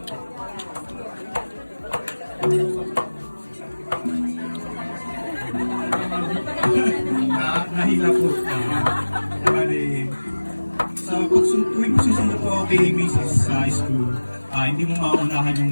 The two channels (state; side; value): inverted; both; correlation -1.00